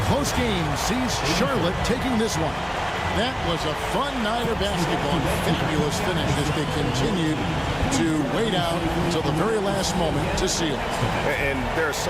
close game sees Charlotte taking this one. That was a fun night of basketball. Fabulous finish as they continued to wait out until the very last moment to seal it. And there are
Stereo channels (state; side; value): identical; both; correlation 1.00